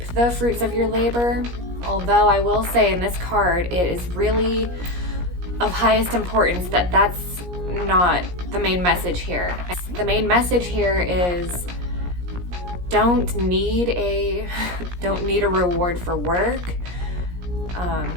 the fruits of your labor. Although I will say in this card, it is really of highest importance that that's not the main message here. The main message here is don't need a reward for work.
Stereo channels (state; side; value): late; left; 17 ms